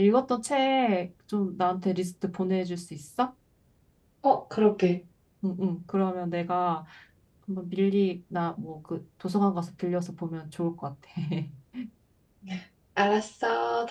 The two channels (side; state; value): both; identical; correlation 1.00